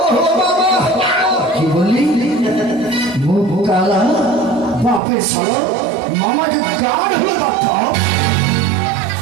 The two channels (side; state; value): left; drops out; at 5.0 s